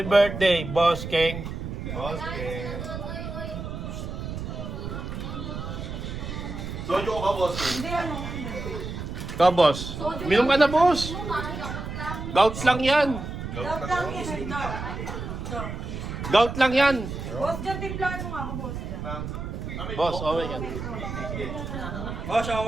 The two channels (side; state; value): right; noise; rumble, 6 dB below the sound